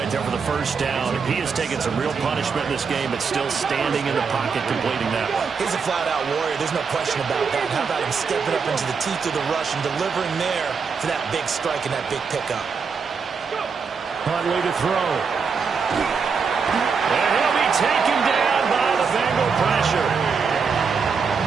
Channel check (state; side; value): quieter; left; 5.6 dB